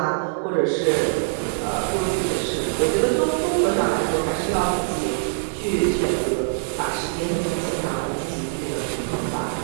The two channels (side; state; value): left; silent; digital silence